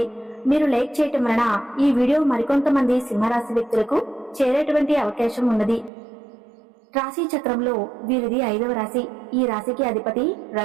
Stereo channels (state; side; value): drops out; left; at 5.9 s